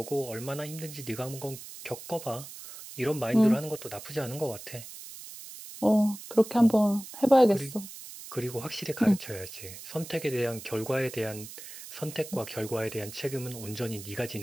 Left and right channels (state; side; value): noise; right; hiss, 13 dB below the sound